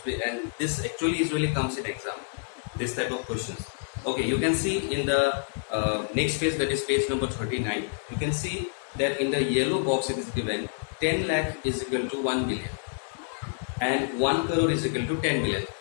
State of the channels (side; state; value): right; silent; digital silence